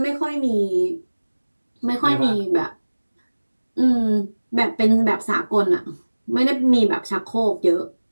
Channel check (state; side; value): inverted; both; correlation -1.00